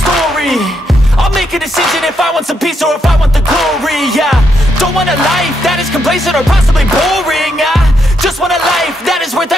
I'll make a decision if I want some peace or if I want the glory, yeah. Don't want a life that is complacent or possibly boring, just want a life that is worth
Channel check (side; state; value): both; normal; correlation 0.78